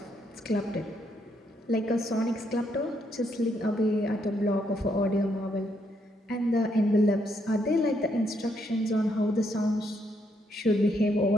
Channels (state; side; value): normal; both; correlation 0.75